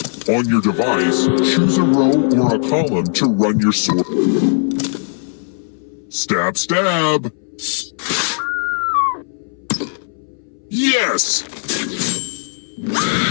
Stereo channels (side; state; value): right; silent; 66 dB below the other